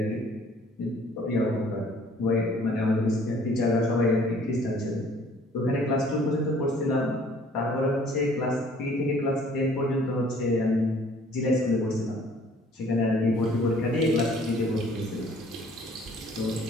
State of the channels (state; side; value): normal; both; correlation 0.56